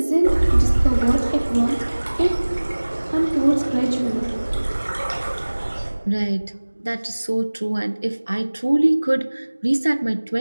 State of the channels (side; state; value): both; inverted; correlation -1.00